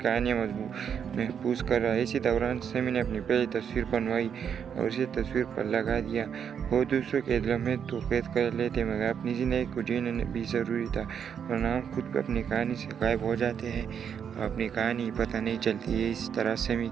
महफूज कर रहा है। इसी दौरान समी ने अपनी पहली तस्वीर बनवाई और इसे तस्वीर पर लगा दिया। वो दूसरों के लम्हे तो कैद कर लेते मगर अपनी ज़िंदगी को जीना भी ज़रूरी था, वरना हम खुद भी अपनी कहानी से गायब हो जाते हैं और अपनी कहानी पता नहीं चलती है। इस तरह समी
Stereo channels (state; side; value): quieter; left; 7.7 dB